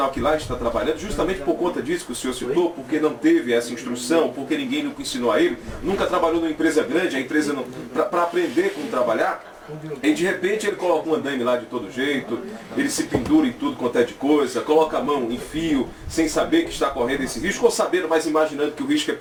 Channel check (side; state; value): both; identical; correlation 1.00